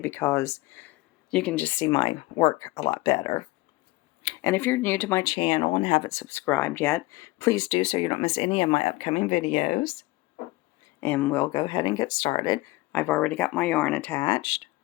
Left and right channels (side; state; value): right; quieter; 20.3 dB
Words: you can just see my work a lot better. And if you're new to my channel and haven't subscribed yet, please do so you don't miss any of my upcoming videos. And we'll go ahead and get started. I've already got my yarn attached,